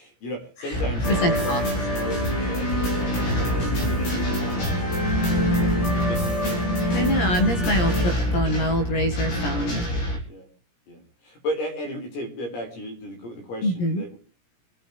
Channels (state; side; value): late; right; 17 ms